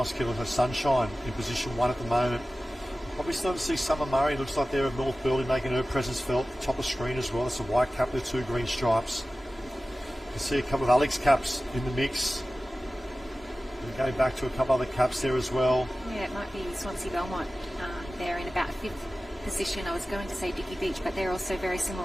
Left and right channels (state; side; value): normal; both; correlation 0.96